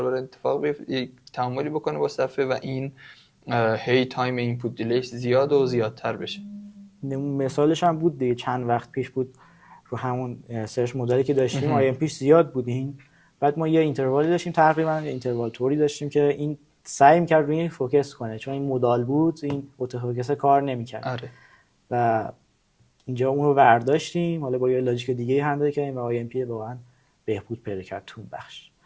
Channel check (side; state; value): both; identical; correlation 1.00